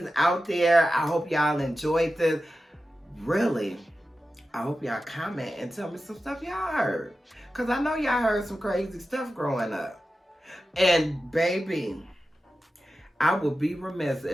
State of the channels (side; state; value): both; normal; correlation 0.92